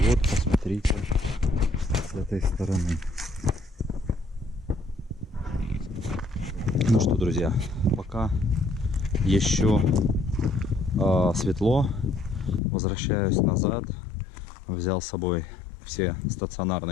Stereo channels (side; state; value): right; drops out; at 12.6 s